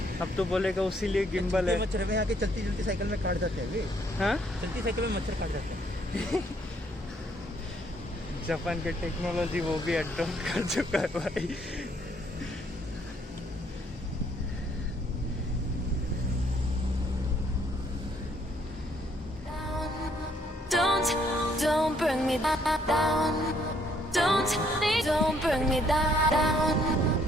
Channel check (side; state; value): both; normal; correlation 0.67